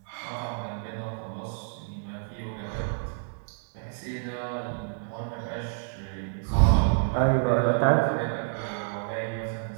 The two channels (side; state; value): left; silent; 59 dB below the other